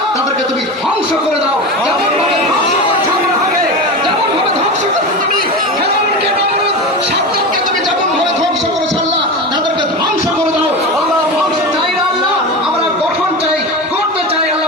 তাদেরকে তুমি ধ্বংস করে দাও। যেমন ভাবে ধ্বংস করছো আল্লাহকে, যেমন ভাবে ধ্বংস করছো তুমি ফেরাউনকে, নমরুদ, সাদ্দাতকে তুমি যেমন ভাবে ধ্বংস করেছো আল্লাহ, তাদেরকে ধ্বংস করে দাও আল্লাহ। ধ্বংস চাই না আল্লাহ, আমরা গঠন চাই, করতে চাই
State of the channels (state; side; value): normal; both; correlation 0.24